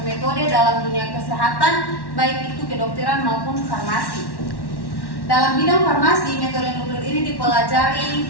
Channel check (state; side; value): late; right; 1.1 ms